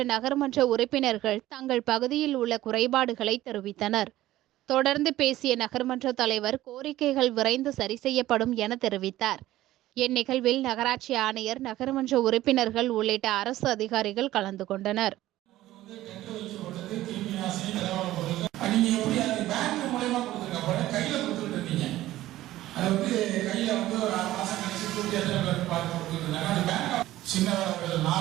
நகர்மன்ற உறுப்பினர்கள் தங்கள் பகுதியில் உள்ள குறைபாடுகளை தெரிவித்தனர். தொடர்ந்து பேசிய நகர்மன்ற தலைவர் கோரிக்கைகள் விரைந்து சரி செய்யப்படும் என தெரிவித்தார். இந்நிகழ்வில் நகராட்சி ஆணையர், நகர்மன்ற உறுப்பினர்கள் உள்ளிட்ட அரசு அதிகாரிகள் கலந்து கொண்டனர். நீங்க எப்படி அது பேங்க் மூலமா கொடுத்துருக்க கையில கொடுத்துட்டு இருந்தீங்க. அது கையில ஒரு 6 மாசம் கழிச்சு கூட்டி பார்த்து கொடுத்துருந்தாங்க. அந்த பேங்க் சின்னவர்கள்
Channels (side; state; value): left; quieter; 15.2 dB